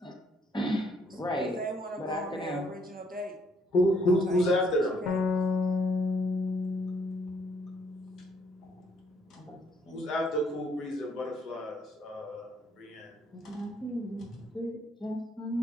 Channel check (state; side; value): normal; both; correlation 0.68